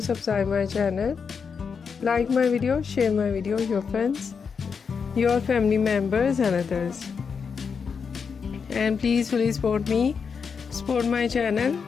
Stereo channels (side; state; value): right; quieter; 6.0 dB